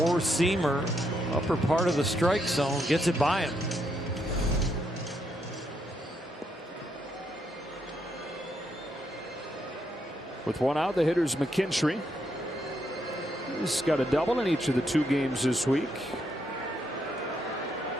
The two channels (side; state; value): both; normal; correlation 0.77